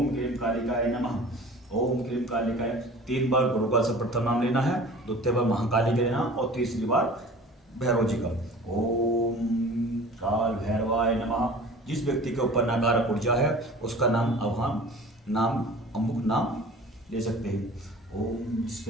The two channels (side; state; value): both; normal; correlation 0.43